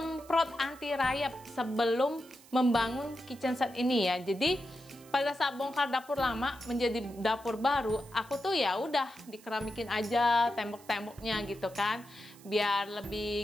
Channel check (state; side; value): noise; right; hiss, 23 dB below the sound